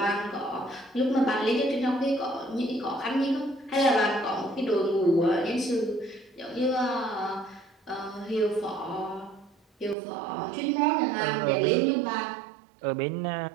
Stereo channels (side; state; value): left; drops out; at 10.0 s